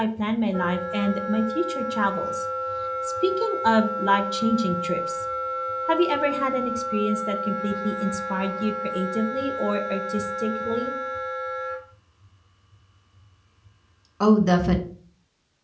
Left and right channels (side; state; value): both; identical; correlation 1.00